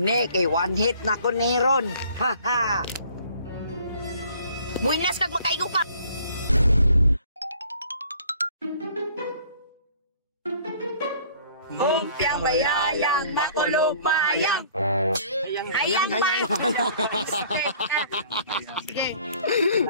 kay one hit na ko ni Ron. Haha. Buinas kag makaigo ka. Umpiang bayayang makulog mahayang. Hayang ba?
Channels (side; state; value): both; inverted; correlation -0.54